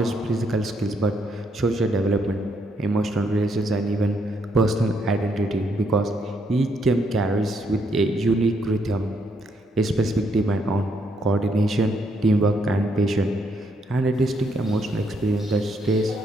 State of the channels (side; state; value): both; normal; correlation 0.74